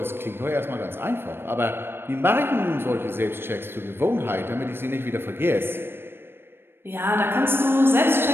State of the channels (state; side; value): late; left; 0.11 ms